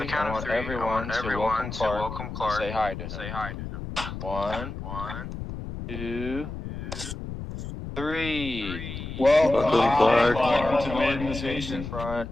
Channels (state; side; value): noise; left; rumble, 8 dB below the sound